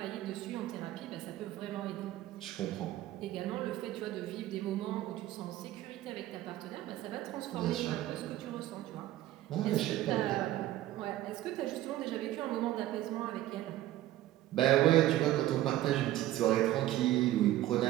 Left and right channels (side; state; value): left; quieter; 14.5 dB